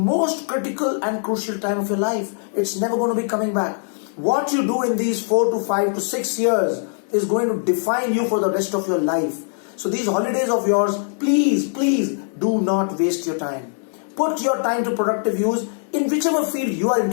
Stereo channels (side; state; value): right; silent; 57 dB below the other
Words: critical and crucial time of your life. It's never going to be coming back. What you do in these 4 to 5 to 6 years is going to define you for the rest of your life. So these holidays of yours, please do not waste your time. Put your time to productive use in whichever field you are